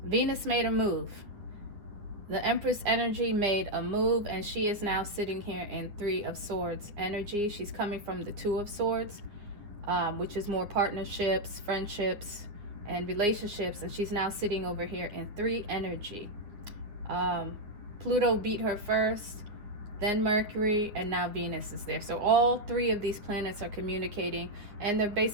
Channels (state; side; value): late; left; 9.7 ms